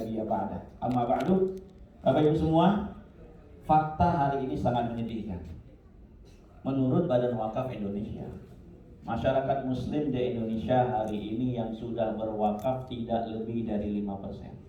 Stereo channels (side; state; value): both; identical; correlation 1.00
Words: ba'dah. Amma ba'du. Bapak Ibu semua, fakta hari ini sangat menyedihkan. Menurut Badan Wakaf Indonesia, masyarakat muslim di Indonesia hari ini yang sudah berwakaf tidak lebih dari 5%.